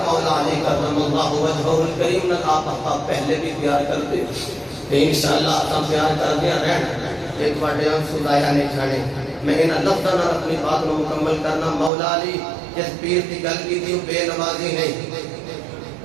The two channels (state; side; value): drops out; left; at 11.9 s